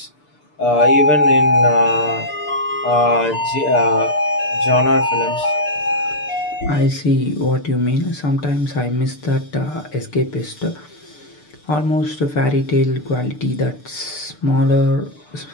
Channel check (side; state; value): right; late; 6.8 ms